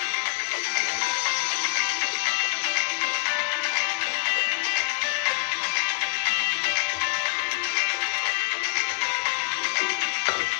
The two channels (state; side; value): quieter; right; 39.8 dB